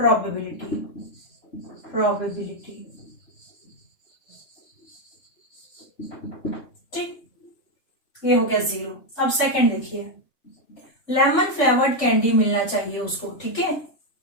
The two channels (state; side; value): late; right; 3.5 ms